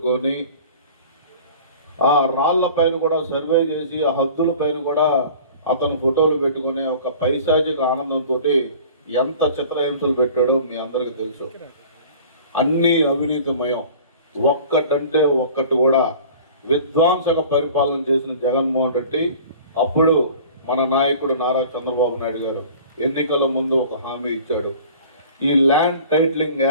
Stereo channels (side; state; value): both; inverted; correlation -0.44